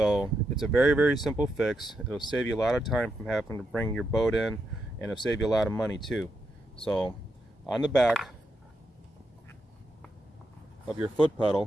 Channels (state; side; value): normal; both; correlation 0.83